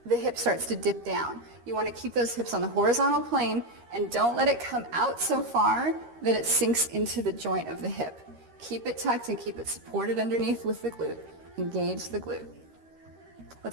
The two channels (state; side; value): late; left; 13 ms